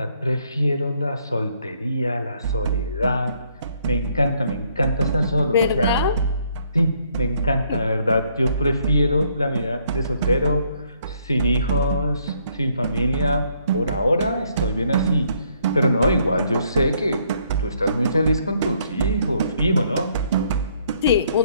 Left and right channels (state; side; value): inverted; both; correlation -0.68